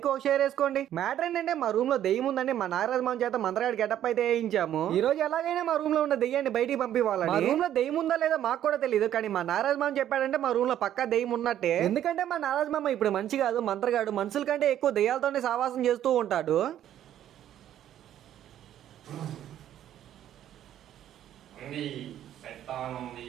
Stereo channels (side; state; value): left; quieter; 11.3 dB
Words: ఒక షేర్ వేసుకోండి. మ్యాటర్ ఏంటంటే మా రూమ్ లో దెయ్యం ఉందండి, మా నారాజ్ మామ చేత మంత్రాడు గెటప్ అయితే వేయించాము. ఈ రోజు ఎలాగైనా మా రూమ్ లో ఉన్న దెయ్యాన్ని బయటికి పంపించాలని. మా రూమ్ లో దెయ్యం ఉందా లేదా మాకు కూడా తెలియదు, కానీ మా నారాజ్ మామ చెప్పాడంటే మా రూమ్ లో పక్కా దెయ్యం ఉన్నట్టే. ఎందుకంటే మా నారాజ్ మామ ఇప్పుడు మంచి కాదు, మంత్రగాడు, మనుషుల కంటే ఎక్కువ దెయ్యాలతోనే సావాసం చేస్తూ ఉంటాడు.